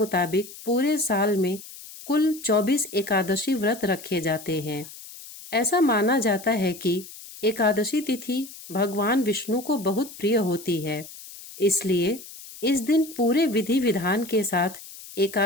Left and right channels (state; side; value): noise; left; hiss, 16 dB below the sound